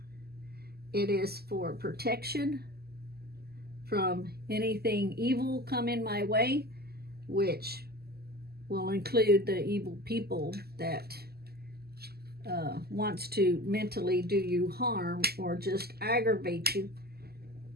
It is for protection from anything evil coming my way, which will include the evil people that wants to mentally do you harm or just aggravate you.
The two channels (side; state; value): left; late; 0.46 ms